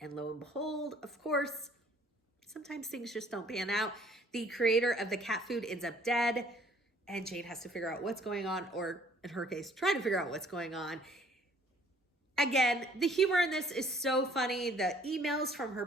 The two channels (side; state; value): both; normal; correlation 0.58